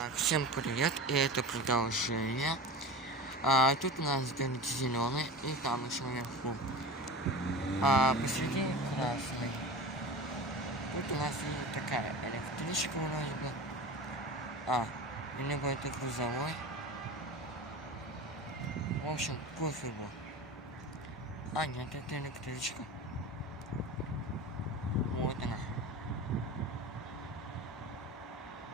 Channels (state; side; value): normal; both; correlation 0.31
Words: Всем привет, и это продолжение. Тут у нас горит зеленый, и там еще наверху. Посередине красный. Тут у нас и такая электричка вроде бы. Либо это грузовой. В общем, пофигу. Нет, это электричка. Вот она.